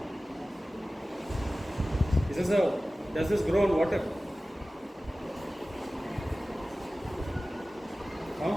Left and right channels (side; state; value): both; normal; correlation 0.96